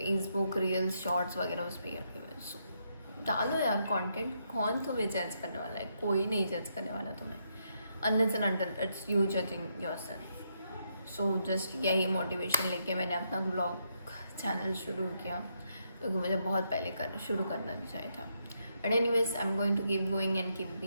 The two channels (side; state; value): both; inverted; correlation -0.78